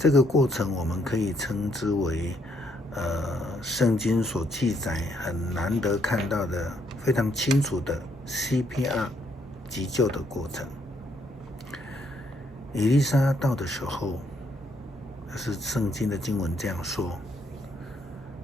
个过程我们可以称之为圣经所记载很难得看到的非常清楚的 CPR 急救的过程。以利沙到的时候，是圣经的经文这样说，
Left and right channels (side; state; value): both; normal; correlation 0.72